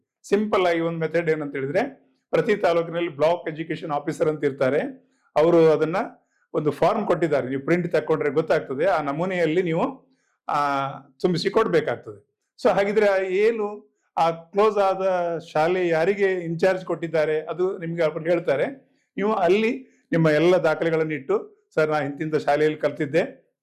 ಸಿಂಪಲ್ ಆಗಿ ಒಂದು ಮೆಥಡ್ ಏನಂತ ಹೇಳಿದ್ರೆ, ಪ್ರತಿ ತಾಲೂಕಿನಲ್ಲಿ ಬ್ಲಾಕ್ ಎಜುಕೇಶನ್ ಆಫೀಸರ್ ಅಂತ ಇರ್ತಾರೆ, ಅವರು ಅದನ್ನ ಒಂದು ಫಾರ್ಮ್ ಕೊಟ್ಟಿದ್ದಾರೆ, ನೀವು ಪ್ರಿಂಟ್ ತಕೊಂಡ್ರೆ ಗೊತ್ತಾಗ್ತದೆ, ಆ ನಮೂನೆಯಲ್ಲಿ ನೀವು ತುಂಬಿಸಿ ಕೊಡ್ಬೇಕಾಗ್ತದೆ. ಸೊ ಹಾಗಿದ್ರೆ ಏನು ಆ ಕ್ಲೋಸ್ ಆದ ಶಾಲೆ ಯಾರಿಗೆ ಇನ್ಚಾರ್ಜ್ ಕೊಟ್ಟಿದ್ದಾರೆ ಅದು ನಿಮ್ಗೆ ಅವ್ರು ಹೇಳ್ತಾರೆ. ನೀವು ಅಲ್ಲಿ ನಿಮ್ಮ ಎಲ್ಲ ದಾಖಲೆಗಳನ್ನು ಇಟ್ಟು, ಸರ್ ನಾ ಇಂತಿಂತ ಶಾಲೆಯಲ್ಲಿ ಕಲ್ತಿದ್ದೆ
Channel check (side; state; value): both; identical; correlation 1.00